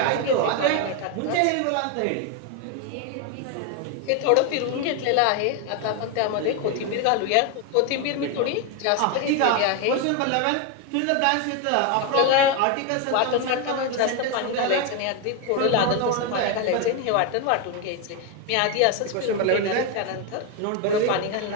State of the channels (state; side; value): different; both; correlation 0.02